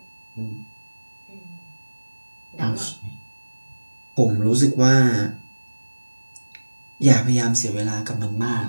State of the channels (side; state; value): both; inverted; correlation -1.00